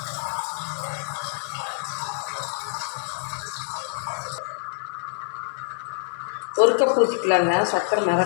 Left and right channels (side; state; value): right; silent; digital silence